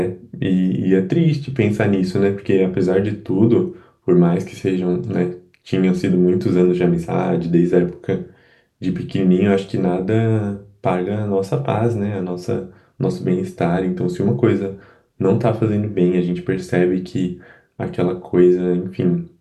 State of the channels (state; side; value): identical; both; correlation 1.00